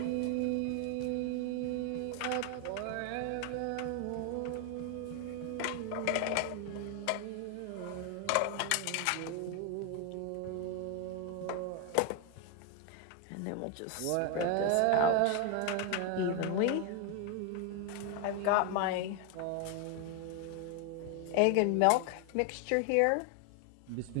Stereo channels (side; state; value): both; different; correlation 0.01